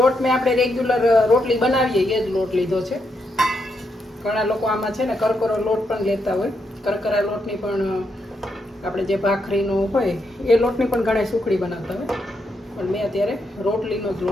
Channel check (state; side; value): normal; both; correlation 0.80